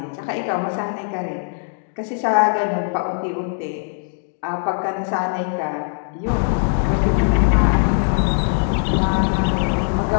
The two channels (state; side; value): silent; right; 65 dB below the other